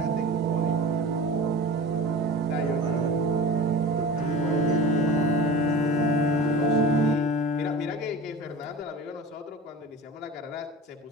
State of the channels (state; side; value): normal; both; correlation 0.34